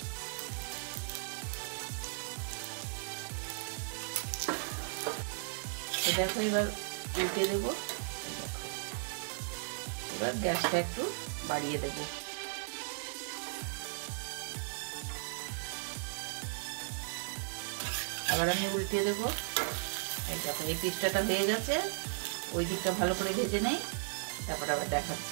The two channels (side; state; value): left; silent; digital silence